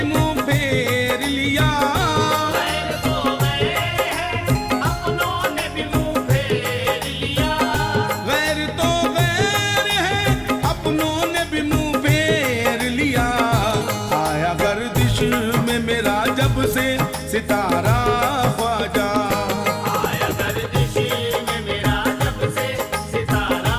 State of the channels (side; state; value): both; identical; correlation 1.00